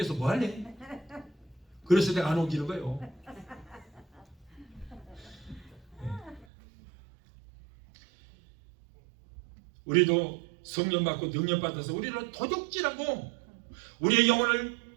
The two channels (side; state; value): left; drops out; at 6.5 s